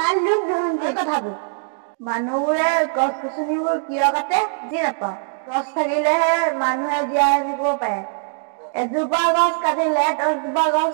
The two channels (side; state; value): left; silent; digital silence